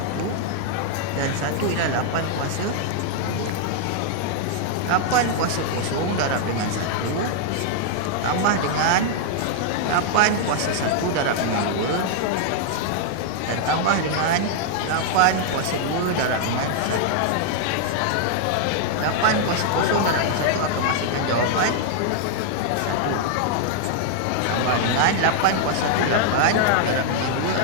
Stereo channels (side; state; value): both; different; correlation -0.01